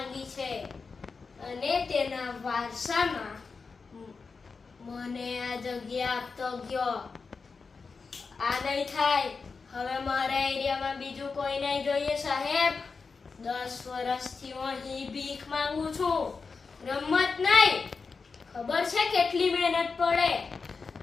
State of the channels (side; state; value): right; quieter; 4.7 dB